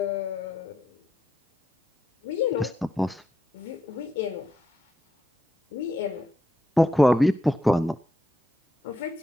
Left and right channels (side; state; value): both; normal; correlation 0.82